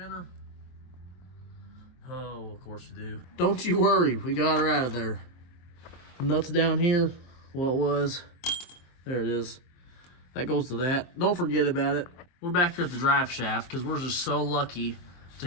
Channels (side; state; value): right; late; 23 ms